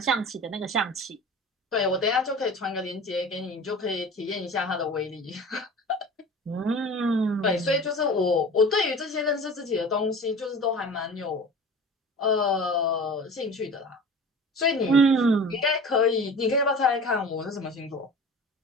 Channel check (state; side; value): normal; both; correlation 0.38